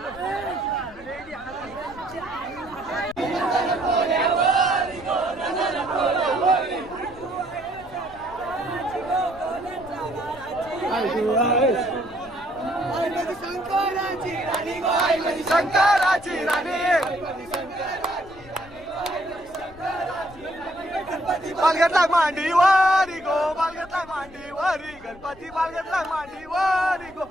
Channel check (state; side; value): noise; left; rumble, 21 dB below the sound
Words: शंकराची राणी बालगतला मांडीवारी गो बालगतला मांडीवारी गणपती बालगतला मांडीवारी गो